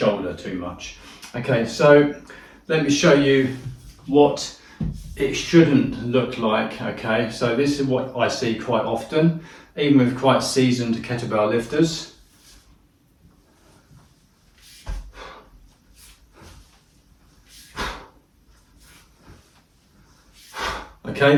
too much. Okay, so let me show you what it shouldn't look like. Okay, so this is what I see quite often, even with quite seasoned kettlebell lifters. Okay,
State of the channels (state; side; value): identical; both; correlation 1.00